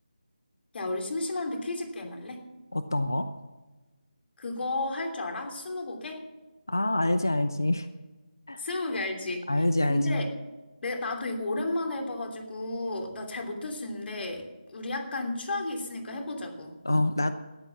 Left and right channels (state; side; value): inverted; both; correlation -0.89